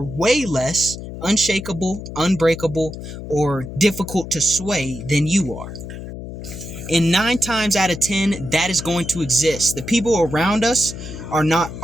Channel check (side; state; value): left; noise; hum, 10 dB below the sound